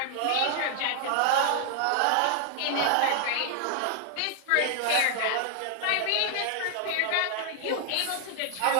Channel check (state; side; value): different; both; correlation 0.00